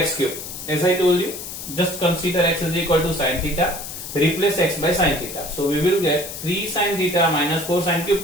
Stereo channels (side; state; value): left; noise; hiss, 9 dB below the sound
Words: cube. As I told you, just consider x is equal to sin theta. Replace x by sin theta. So we will get 3 sin theta minus 4 sin cube